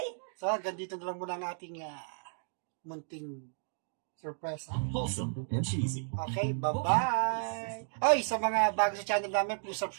So, hanggang dito na lang muna ang ating munting surprise. Wholesome and cheesy. Okay, bye-bye! Oy, sa mga bago sa channel namin, please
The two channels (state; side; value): silent; left; digital silence